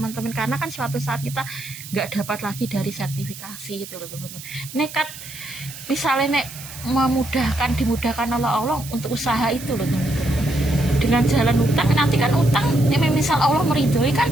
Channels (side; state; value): right; noise; hiss, 13 dB below the sound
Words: karena kan suatu saat kita nggak dapat lagi dari sertifikasi gitu loh teman-teman. Nekat misalnya dimudahkan oleh Allah untuk usaha itu loh teman-teman, dengan jalan utang. Nanti kan utang misal Allah meridhoi kan,